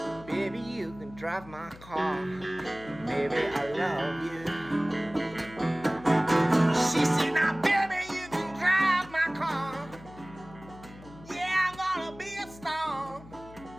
Baby, you can drive my car. Baby, I love you. She said, now baby, you can drive my car. Yeah, I'm gonna be a star.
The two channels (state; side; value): noise; left; hum, 19 dB below the sound